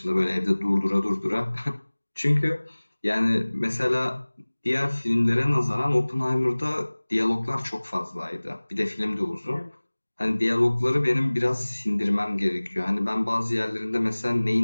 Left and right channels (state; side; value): inverted; both; correlation -1.00